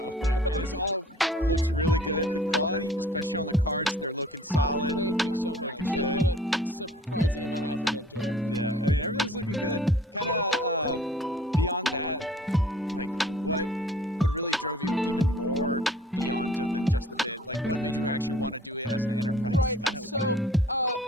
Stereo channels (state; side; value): normal; both; correlation 0.52